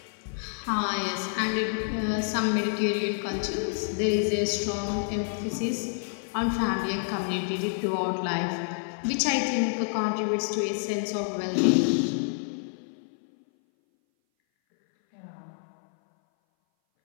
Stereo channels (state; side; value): silent; right; 59 dB below the other